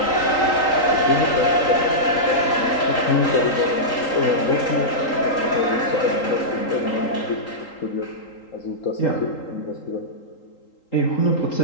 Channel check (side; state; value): right; late; 3.8 ms